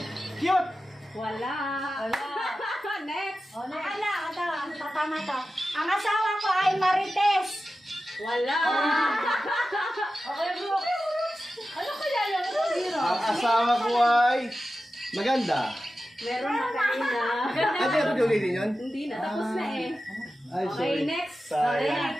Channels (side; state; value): both; normal; correlation 0.93